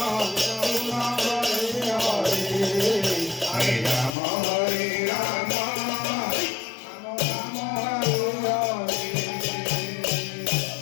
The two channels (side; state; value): right; drops out; at 4.1 s